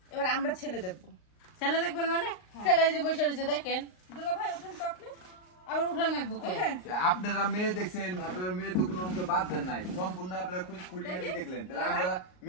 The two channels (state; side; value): late; right; 38 ms